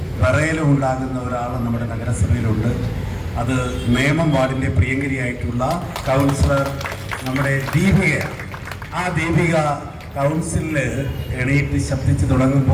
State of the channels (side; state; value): both; identical; correlation 1.00